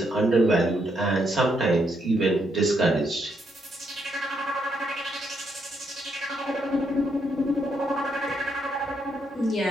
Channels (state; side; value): normal; both; correlation 0.76